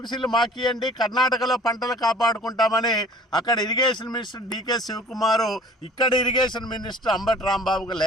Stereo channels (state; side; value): normal; both; correlation 0.49